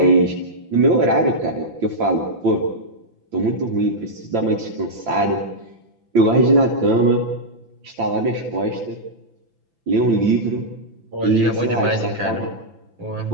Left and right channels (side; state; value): left; late; 5.9 ms